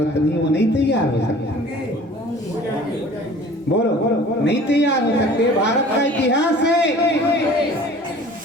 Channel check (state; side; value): normal; both; correlation 0.47